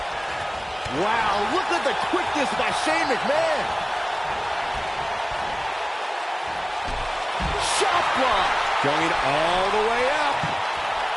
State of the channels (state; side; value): identical; both; correlation 1.00